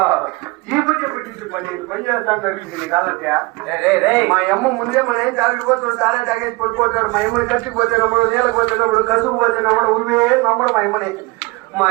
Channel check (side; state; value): left; quieter; 24.1 dB